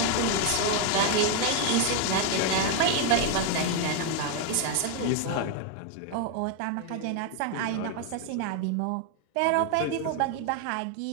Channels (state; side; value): different; both; correlation 0.01